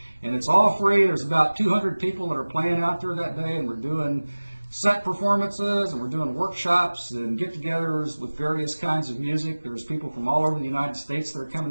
And it's all free. There's about 200 people that are playing out there that day, and we're doing set performances, and we're doing workshops and get-togethers with various kinds of music. There's people from all over the United States that are coming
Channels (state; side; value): inverted; both; correlation -1.00